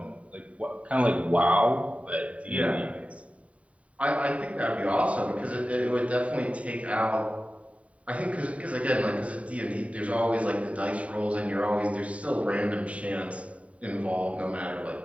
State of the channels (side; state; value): left; late; 0.066 ms